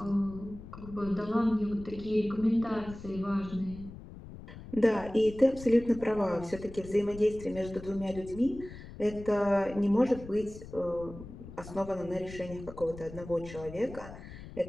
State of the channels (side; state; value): left; noise; rumble, 14 dB below the sound